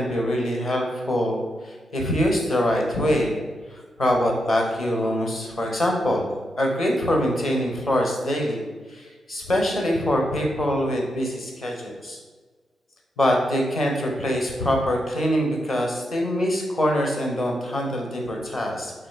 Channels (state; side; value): normal; both; correlation 0.83